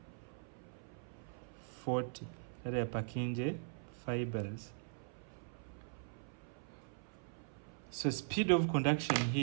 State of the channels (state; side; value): silent; left; 50 dB below the other